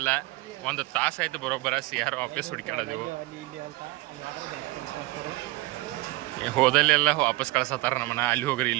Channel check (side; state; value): left; quieter; 21.1 dB